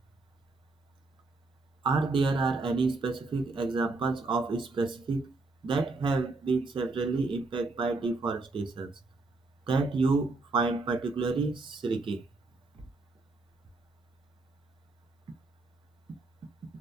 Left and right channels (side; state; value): left; quieter; 3.4 dB